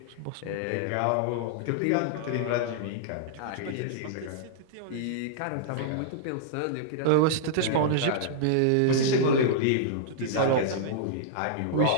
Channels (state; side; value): different; both; correlation -0.01